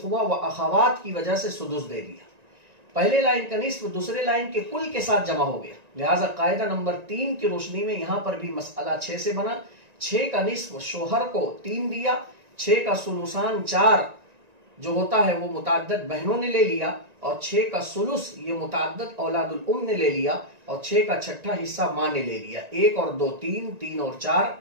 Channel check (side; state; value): left; late; 1.9 ms